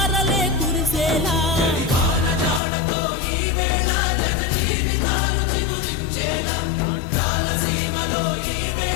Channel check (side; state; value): right; drops out; at 2.6 s